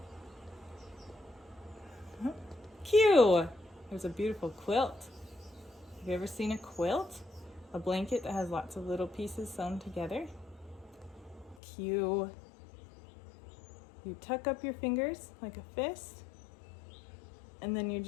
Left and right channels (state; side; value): drops out; right; at 11.6 s